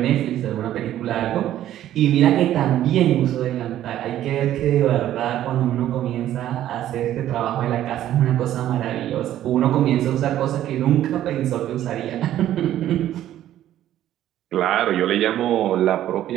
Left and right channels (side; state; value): left; quieter; 12.4 dB